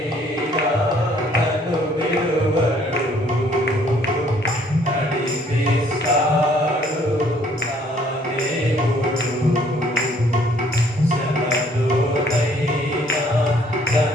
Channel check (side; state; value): both; normal; correlation 0.62